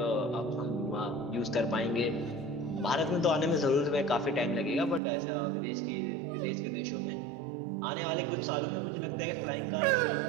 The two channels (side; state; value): left; drops out; at 5.0 s